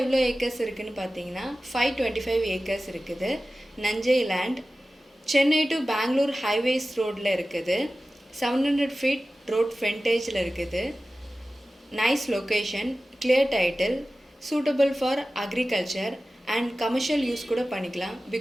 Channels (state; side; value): normal; both; correlation 0.95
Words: எவ்வளோ ஏக்கர்ஸ் இருக்குதுன்னு பார்த்தீங்கன்னா 525 ஏக்கர்ஸ் இருக்குது. நஞ்சை land. Chennai to Bangalore highways ரோடில் இருக்குது. 700 ஃபீட் ரோட் ஃப்ரண்டேஜில் இருக்குது. Nice location, clear title, suitable for agriculture and commercial use கூட பண்ணிக்கலாம்.